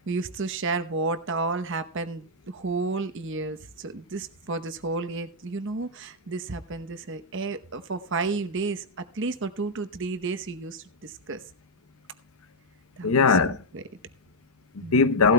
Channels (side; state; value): both; normal; correlation -0.02